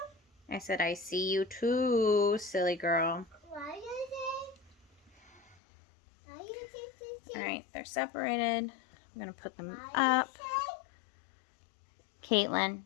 I said I see you too, silly girl. Why you see? Why you see? Alright, they're separated. I'm gonna put them Why up. Caitlin.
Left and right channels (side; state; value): right; drops out; at 5.6 s